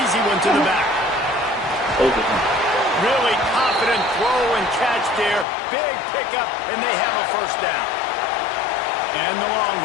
easy one to the back. Really confident throw and catch there. Big pickup, and they have a 1st down. And the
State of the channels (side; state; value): right; drops out; at 5.5 s